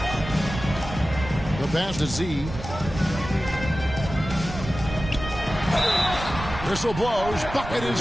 The pass to Z. Whistle blows. Bucket is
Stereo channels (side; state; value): right; noise; rumble, 9 dB below the sound